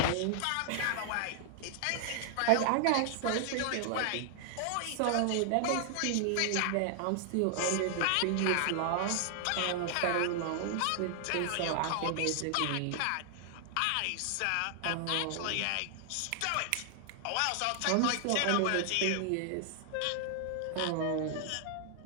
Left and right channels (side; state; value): both; different; correlation 0.00